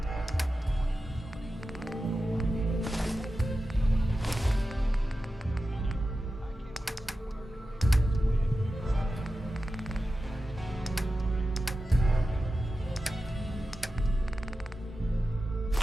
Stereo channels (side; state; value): both; normal; correlation 0.93